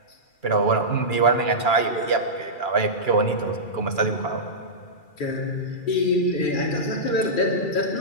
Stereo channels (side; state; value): right; late; 2.3 ms